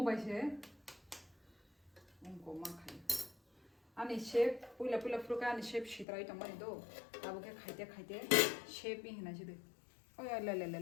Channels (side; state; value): right; drops out; at 6.1 s